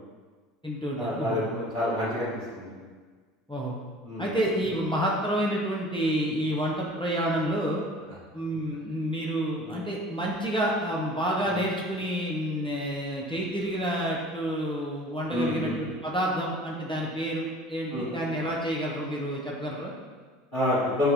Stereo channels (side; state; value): both; normal; correlation 0.46